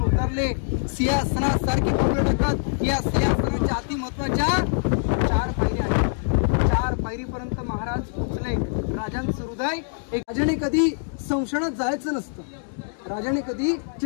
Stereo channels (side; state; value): right; silent; 63 dB below the other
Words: उतरले, सिंहासनासारखी पावलं टाकत या सिंहासनाच्या अति महत्वाच्या 4 पायऱ्या आहेत। 4 पायरीपर्यंत महाराज पोहोचले। राजांचं हृदय एक, राजाने कधी संशयात जायचं नसतं, राजाने कधी